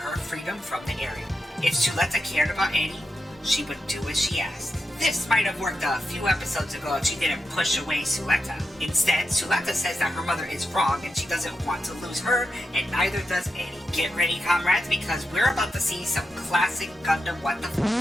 freedom from the Ariel. If Suletta cared about Eddie, she would do as she asked. This might have worked a few episodes ago if she didn't push away Suletta. Instead, Suletta says that her mother is wrong and she doesn't want to lose her, and neither does Eddie. Get ready, comrades, because we're about to see some classic Gundam what the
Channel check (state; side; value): normal; both; correlation 0.87